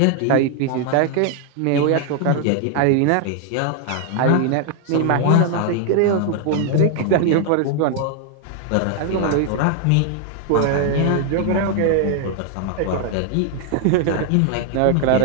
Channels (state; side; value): different; both; correlation 0.00